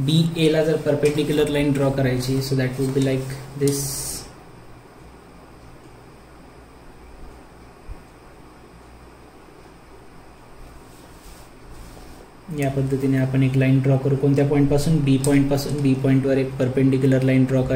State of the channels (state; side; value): identical; both; correlation 1.00